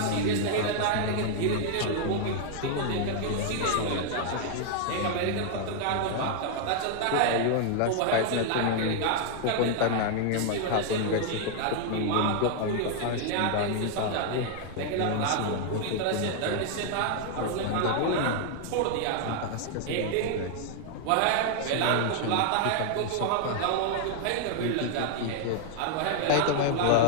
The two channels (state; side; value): different; both; correlation 0.00